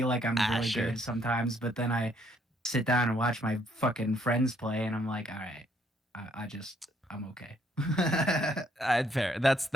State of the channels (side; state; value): both; normal; correlation 0.69